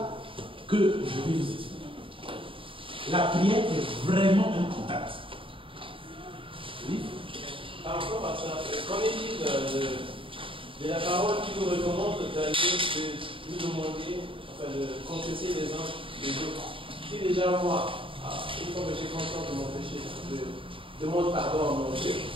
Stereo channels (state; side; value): late; left; 0.25 ms